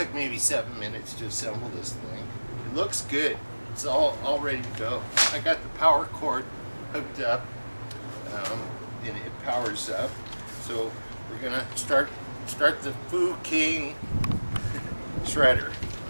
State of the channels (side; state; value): both; inverted; correlation -1.00